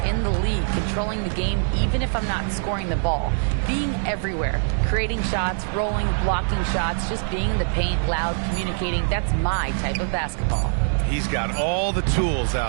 the league, controlling the game even if I'm not scoring the ball. Being everywhere, creating shots, rolling, blocking shots, just being in the paint, loud, communicating. That's my type of basketball." He's got all the tools,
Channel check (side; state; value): left; silent; 63 dB below the other